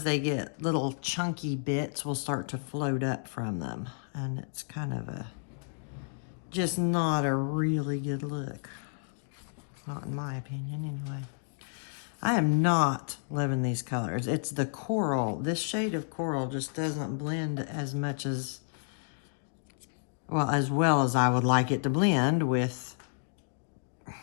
they get little chunky bits will start to float up from them. And it's kind of a, just not a really good look. Not in my opinion, anyway. I am not loving these colors. It's the coral. This shade of coral just doesn't blend as much as, well as I would like it to blend with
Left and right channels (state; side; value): silent; right; digital silence